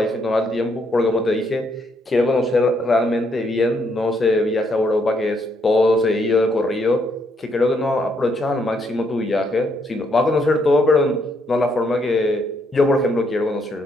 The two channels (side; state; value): both; normal; correlation 0.73